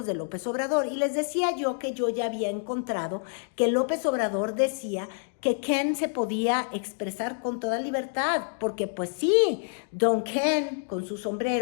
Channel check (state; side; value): silent; right; digital silence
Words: de López Obrador. Y les decía yo que yo ya había encontrado que López Obrador decía que Ken se podía expresar con toda libertad, porque pues sí, don Ken con su